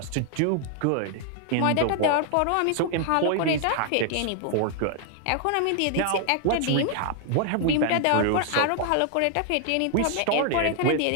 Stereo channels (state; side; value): different; both; correlation 0.00